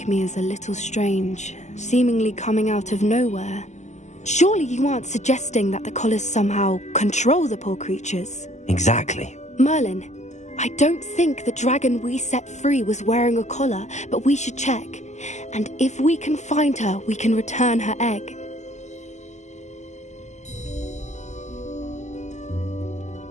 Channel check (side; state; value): right; late; 0.34 ms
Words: me as a little strange, seemingly coming out of nowhere. Surely you aren't suggesting that the collars somehow control the poor creatures? Exactly. Merlin, I don't think the dragon we set free was wearing a collar, but we should check. And if we can find her, we can return her egg.